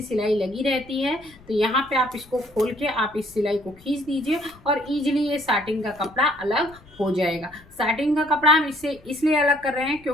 सिलाई लगी रहती है, तो यहाँ पे आप इसको खोल के आप इस सिलाई को खींच दीजिए और इजीली ये साटिन का कपड़ा अलग हो जाएगा। साटिन का कपड़ा हम इससे इसलिए अलग कर रहे हैं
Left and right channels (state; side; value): noise; left; rumble, 24 dB below the sound